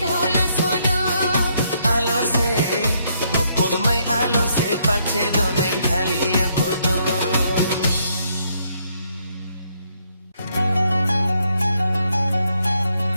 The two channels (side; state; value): both; inverted; correlation -0.73